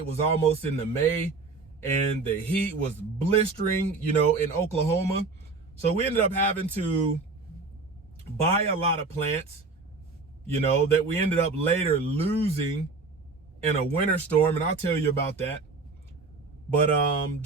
was almost into May, and the heat was blistering, in Oklahoma. So we ended up having to buy a lot of plants, that we ended up later losing in a winter storm. And I'll tell you about that. But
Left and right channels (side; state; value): left; quieter; 4.0 dB